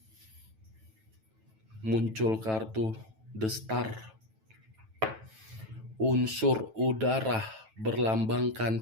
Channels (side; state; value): left; late; 9.2 ms